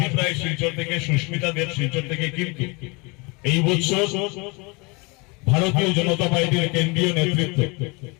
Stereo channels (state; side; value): quieter; right; 28.5 dB